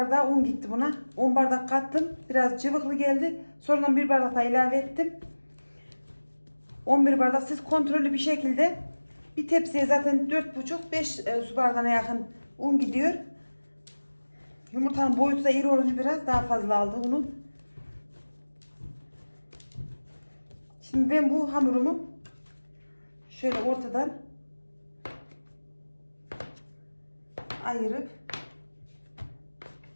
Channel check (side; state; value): both; inverted; correlation -1.00